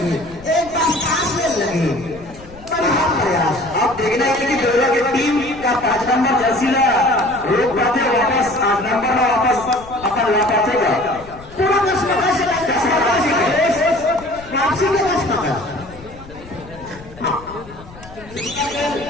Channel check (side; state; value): left; noise; rumble, 19 dB below the sound